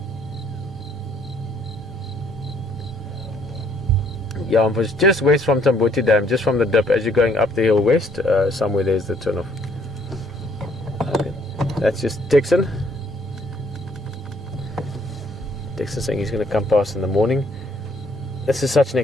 Yeah, I'm just west from Tambuti Dam, just from the dip as you're going up the hill west. Somewhere there's the turn off. Okay. That's just Texan. Texan saying he's going to come past in the morning. This is such an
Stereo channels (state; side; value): normal; both; correlation 0.65